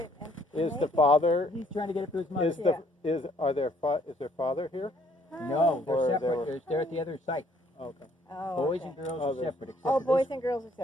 And Is the father? He's trying to get it to his mother. Is their father here? No, they're Or they separate. were- They're at the other site. Okay. Oh, Boys okay. and girls Oh, are they're- separate. Except Oh, for boys and girls are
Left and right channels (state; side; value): normal; both; correlation 0.64